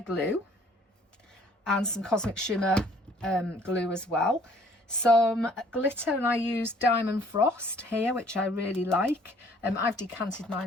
glue, and some Cosmic Shimmer glue as well. Some glitter, and I used Diamond Frost here, which I really like. I've decanted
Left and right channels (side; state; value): both; normal; correlation 0.58